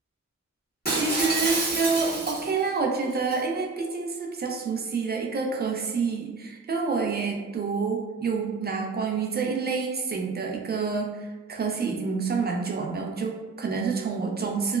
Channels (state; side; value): quieter; left; 4.2 dB